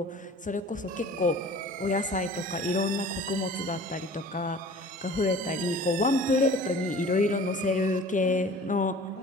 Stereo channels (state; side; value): normal; both; correlation 0.44